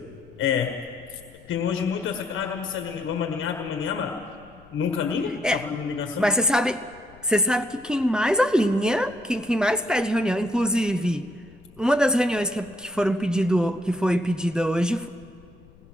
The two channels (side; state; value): left; noise; rumble, 25 dB below the sound